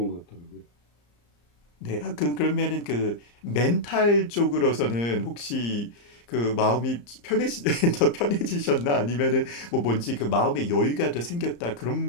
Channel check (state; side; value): late; right; 34 ms